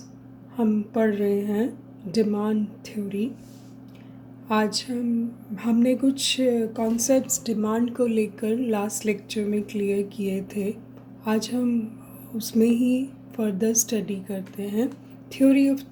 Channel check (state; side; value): identical; both; correlation 1.00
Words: हम पढ़ रहे हैं डिमांड थ्योरी। आज हमने कुछ कॉन्सेप्ट्स डिमांड को लेकर लास्ट लेक्चर में क्लियर किए थे। आज हम उसमें ही फर्दर स्टडी करते हैं। Theory of